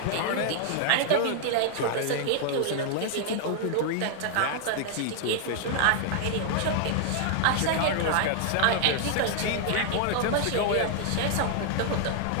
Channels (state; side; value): different; both; correlation 0.00